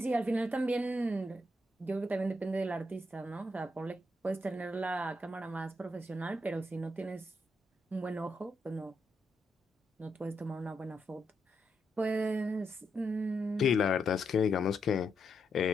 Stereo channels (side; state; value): both; normal; correlation 0.81